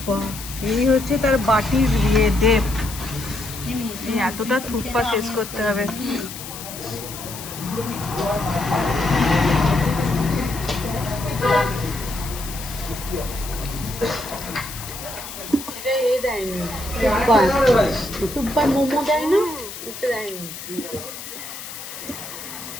এই হচ্ছে তার বাটির ডেপ। এই এতটা থুপ্পা শেষ করতে হবে। মোমো দেয় না, দেয়নি।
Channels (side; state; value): left; noise; hiss, 11 dB below the sound